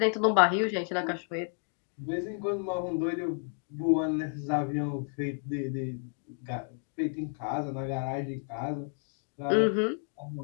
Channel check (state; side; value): silent; right; 57 dB below the other